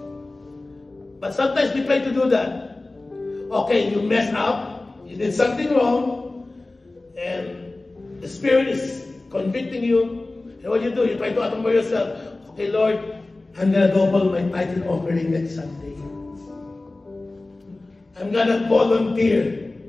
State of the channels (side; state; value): right; quieter; 3.0 dB